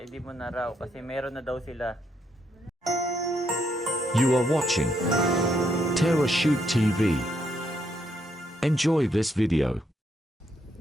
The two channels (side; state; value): both; normal; correlation 0.76